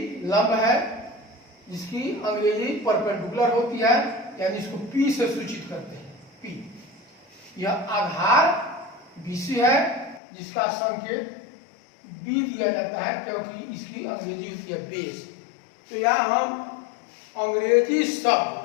लंब है, जिसकी अंग्रेजी परपेंडिकुलर होती है, यानी इसको P से सूचित करते हैं, P। यह आधार BC है, जिसका संकेत B दिया जाता है, क्योंकि इसकी अंग्रेजी होती है बेस। तो यहाँ हम अंग्रेजी शब्द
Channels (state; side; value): drops out; right; at 10.2 s